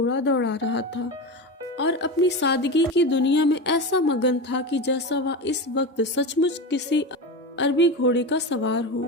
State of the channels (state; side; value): normal; both; correlation 0.22